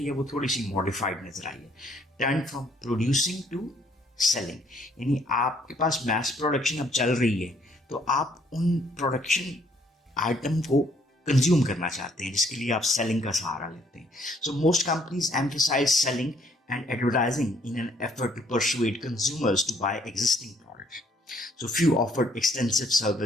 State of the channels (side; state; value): both; normal; correlation 0.65